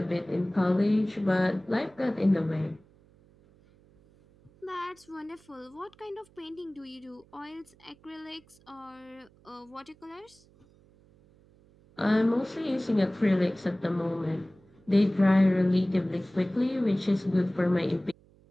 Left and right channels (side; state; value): right; noise; hum, 29 dB below the sound